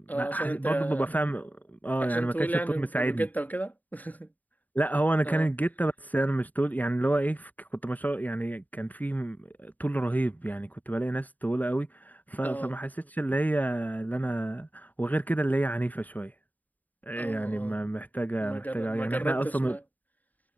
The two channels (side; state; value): right; late; 0.080 ms